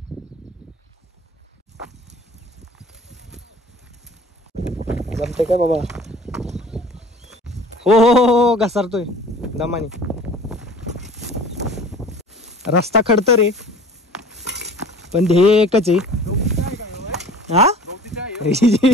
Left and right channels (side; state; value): both; normal; correlation 0.45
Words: जमते काय बाबा? हो हो हो घसरतोय दमानी. रस्ता खडतर रे, पण ध्येय एकच आहे. हा